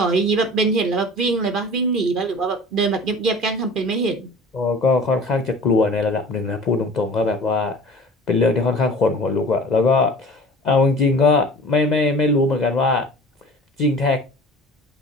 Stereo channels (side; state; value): both; normal; correlation 0.42